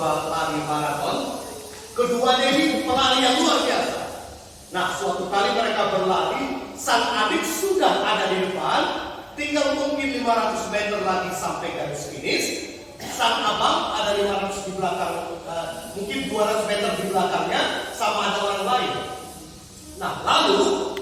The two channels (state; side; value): identical; both; correlation 1.00